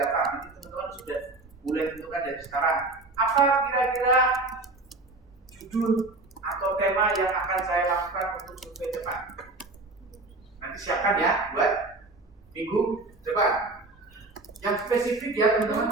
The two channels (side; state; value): left; quieter; 3.1 dB